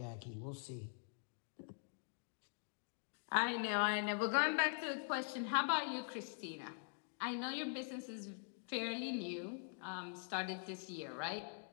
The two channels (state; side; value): silent; right; digital silence